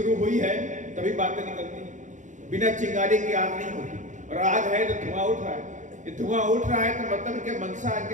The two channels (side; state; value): left; late; 0.36 ms